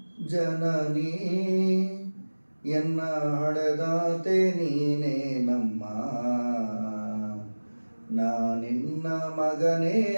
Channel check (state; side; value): inverted; both; correlation -1.00